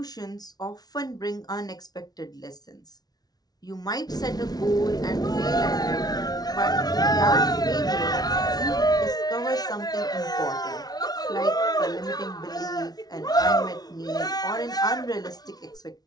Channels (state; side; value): late; right; 0.19 ms